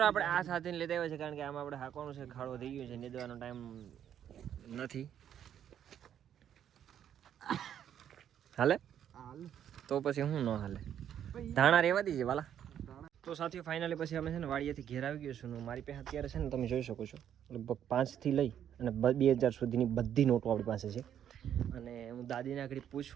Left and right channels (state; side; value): quieter; left; 9.7 dB